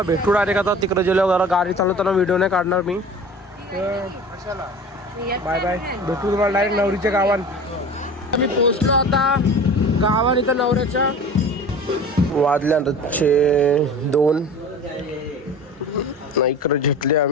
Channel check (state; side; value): normal; both; correlation 0.38